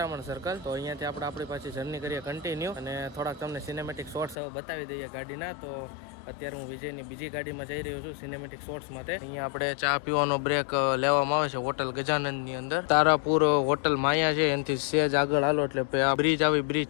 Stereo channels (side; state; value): right; drops out; at 4.4 s